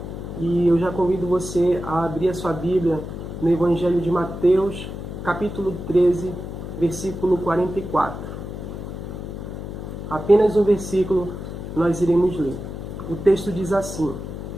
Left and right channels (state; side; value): noise; left; hum, 8 dB below the sound